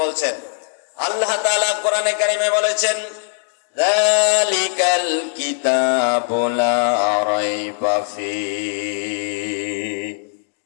বলছেন। আল্লাহ তাআলা কোরআনে কারিমে বলেছেন, যালিকাল কিতাবু লা রাইবা ফীহি,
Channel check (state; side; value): silent; right; 64 dB below the other